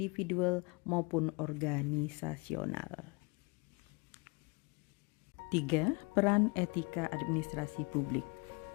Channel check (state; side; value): quieter; right; 29.9 dB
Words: maupun organisasional. 3. Peran etika administrasi publik.